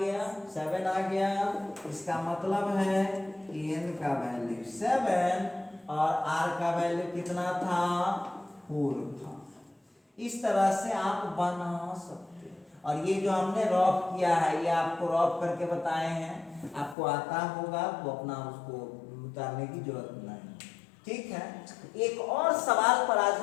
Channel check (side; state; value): right; drops out; at 16.9 s